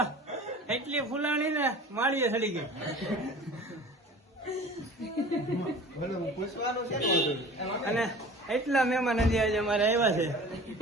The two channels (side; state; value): both; normal; correlation 0.41